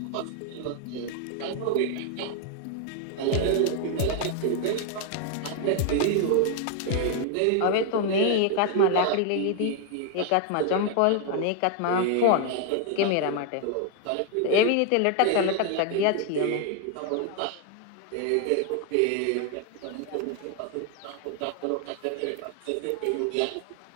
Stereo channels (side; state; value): both; different; correlation 0.00